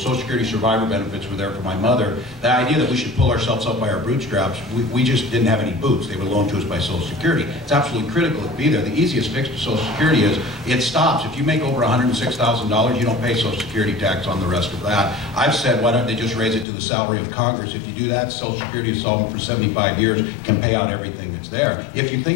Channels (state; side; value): drops out; right; at 16.7 s